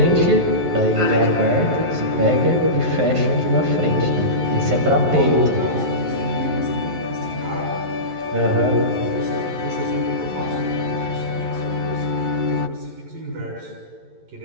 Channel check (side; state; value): left; late; 11 ms